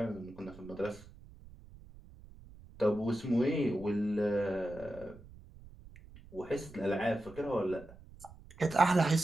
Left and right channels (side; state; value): right; noise; rumble, 20 dB below the sound